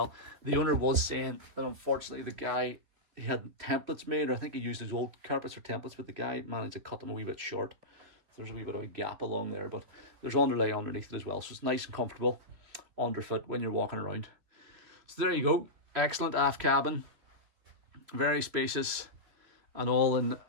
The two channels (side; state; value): left; late; 3.0 ms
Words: The owner was saying that unfortunately the guy, he had templates made, or I think he used his old carpets for templates, but the guy managed to cut them a wee bit short. So there's a wee bit of a gap along there, but there's underlay underneath it as well, so it's nice and comfortable underfoot when you're walking around. So there you go. Excellent aft cabin, very spacious, and all in